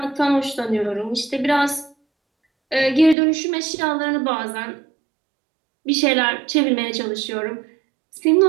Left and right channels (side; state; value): left; drops out; at 3.2 s